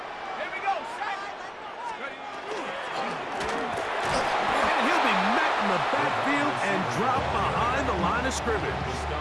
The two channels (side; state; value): both; identical; correlation 1.00